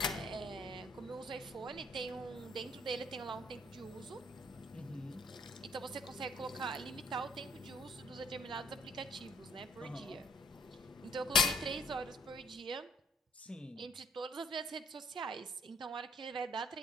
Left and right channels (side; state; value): both; normal; correlation 0.62